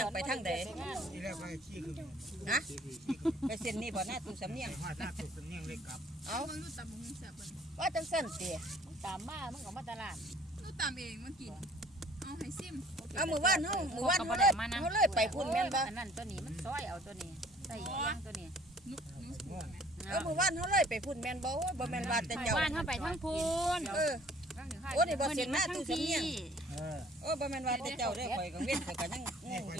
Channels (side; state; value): both; normal; correlation 0.56